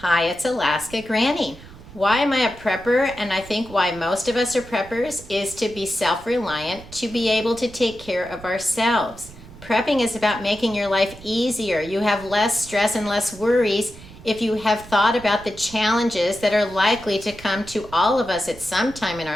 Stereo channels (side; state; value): right; noise; rumble, 18 dB below the sound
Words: Hi, it's Alaska Granny. Why am I a prepper? And I think why most of us are preppers is to be self-reliant, to be able to take care of ourselves. Prepping is about making your life easier. You have less stress and less worries if you have thought about the challenges that are likely to come to all of us at some time in